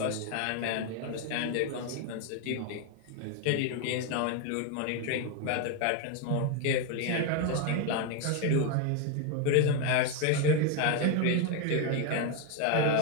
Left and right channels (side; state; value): both; different; correlation 0.02